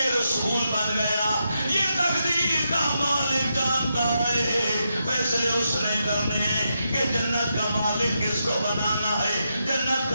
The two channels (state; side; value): inverted; both; correlation -0.84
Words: رسول بن گیا یہ تقدیر کا مالک جانتا ہے فیصلے اس نے کرنے ہیں کہ جنت کا مالک کس کو بنانا ہے جنت